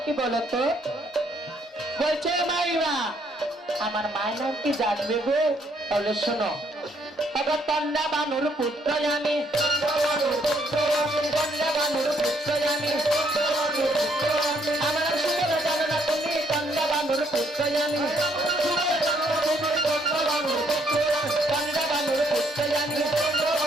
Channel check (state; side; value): normal; both; correlation 0.69